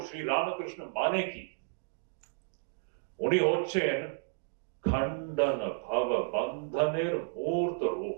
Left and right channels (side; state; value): left; silent; digital silence